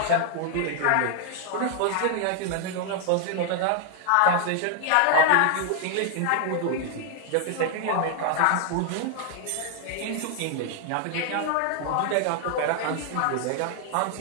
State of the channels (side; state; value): both; different; correlation 0.00